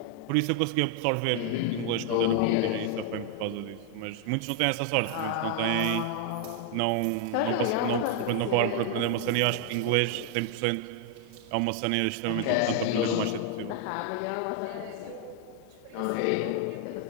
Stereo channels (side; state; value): both; different; correlation 0.00